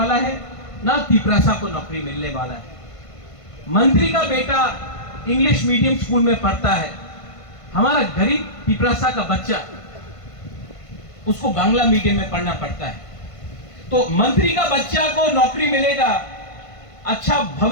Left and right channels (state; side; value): late; right; 1.5 ms